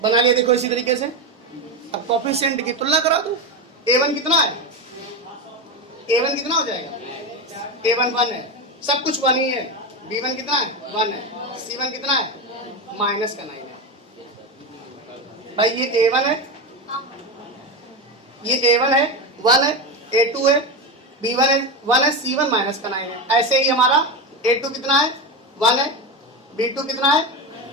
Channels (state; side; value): normal; both; correlation 0.16